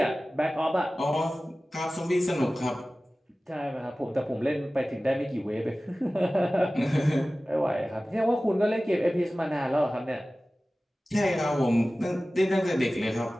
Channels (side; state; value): both; normal; correlation 0.97